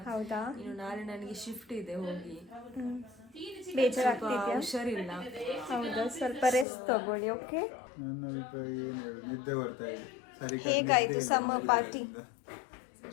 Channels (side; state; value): right; drops out; at 6.7 s